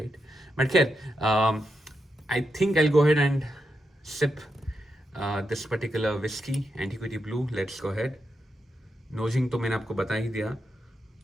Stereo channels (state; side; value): normal; both; correlation 0.85